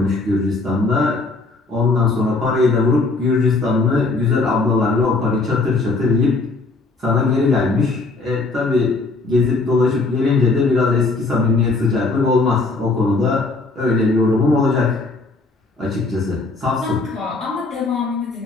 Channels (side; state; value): right; quieter; 3.6 dB